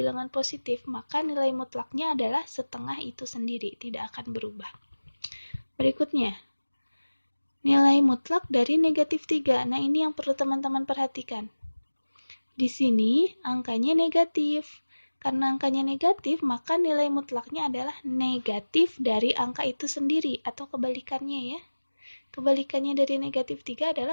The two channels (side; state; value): both; inverted; correlation -1.00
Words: positif, maka nilai mutlaknya adalah setengah itu sendiri, tidak akan berubah. Berikutnya, nilai mutlak dari negatif 3. Nah, ini yang perlu teman-teman perhatikan. Di sini angkanya negatif. Karena angkanya negatif, maka nilai mutlaknya adalah negatif dari angka itu sendiri, atau kebalikannya ya. Kebalikannya dari negatif 3